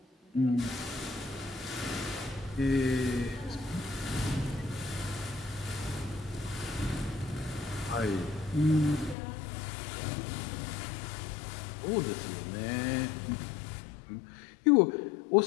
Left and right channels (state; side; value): drops out; right; at 9.2 s